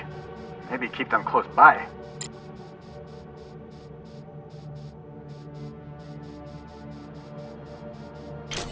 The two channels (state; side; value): identical; both; correlation 1.00